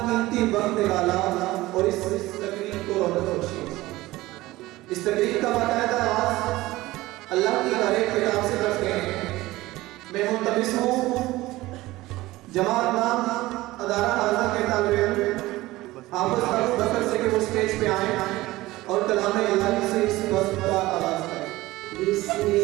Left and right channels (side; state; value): left; quieter; 18.3 dB